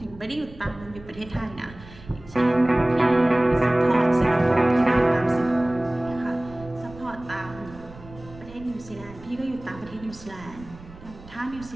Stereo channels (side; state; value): right; noise; rumble, 19 dB below the sound